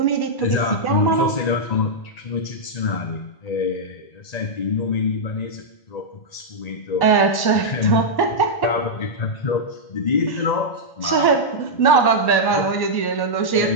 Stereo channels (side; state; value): right; late; 1.1 ms